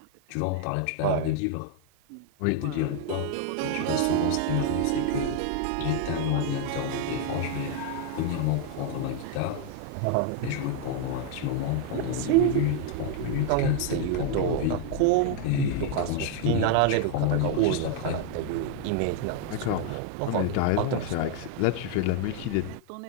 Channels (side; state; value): both; different; correlation 0.00